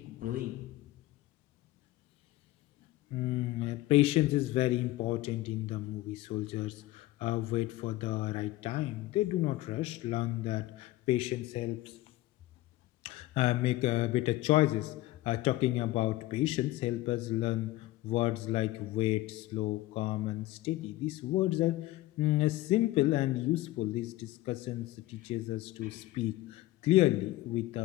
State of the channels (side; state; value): right; quieter; 17.3 dB